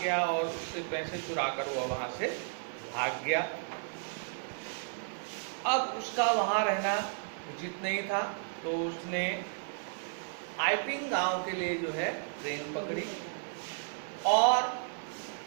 और उससे पैसे चुराकर वह वहाँ से भाग गया. अब उसका वहाँ रहना उचित नहीं था तो उसने आइपिंग गांव के लिए जो है ट्रेन पकड़ी और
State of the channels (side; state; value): left; silent; digital silence